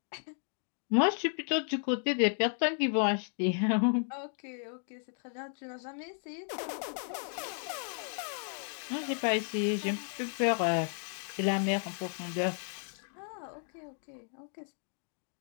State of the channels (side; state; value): right; silent; 55 dB below the other